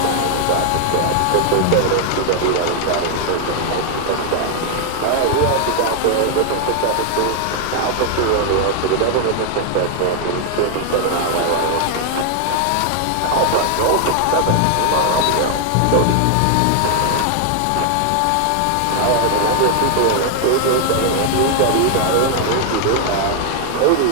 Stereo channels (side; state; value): both; different; correlation 0.00